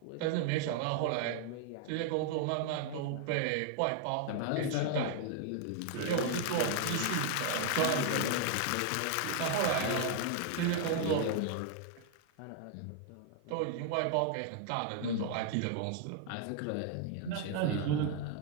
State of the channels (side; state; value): both; different; correlation 0.00